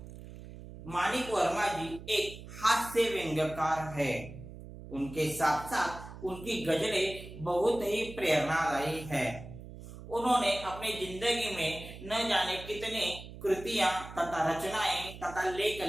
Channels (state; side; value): noise; right; hum, 14 dB below the sound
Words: मानिक वर्मा जी एक हास्य व्यंग्यकार है। उनके साथ साथ उनकी गजलें बहुत ही प्रेरणादायी है। उन्होंने अपनी जिंदगी में न जाने कितने कृतियां तथा रचनाएं तथा लेख